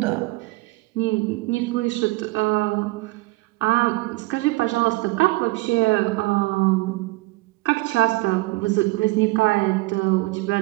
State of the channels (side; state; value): left; quieter; 21.5 dB